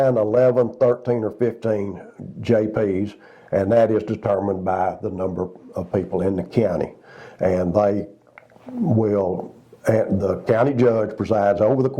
11, 13, or 15 JPs, and that is determined by the number of people in the county. And they will, and the county judge presides over the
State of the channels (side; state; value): both; identical; correlation 1.00